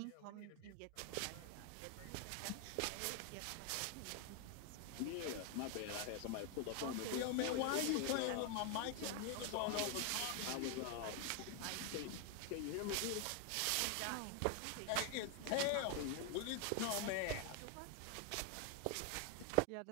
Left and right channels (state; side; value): different; both; correlation 0.00